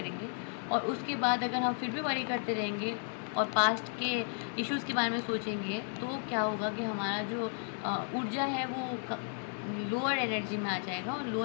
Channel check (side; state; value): right; silent; 55 dB below the other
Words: और उसके बाद अगर हम फिर भी वरी करते रहेंगे और पास्ट के इश्यूज़ के बारे में सोचेंगे तो क्या होगा कि हमारा जो ऊर्जा है वो लोअर एनर्जी में आ जाएगा। और